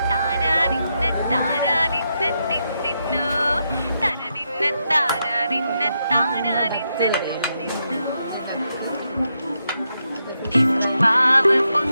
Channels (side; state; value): both; inverted; correlation -0.83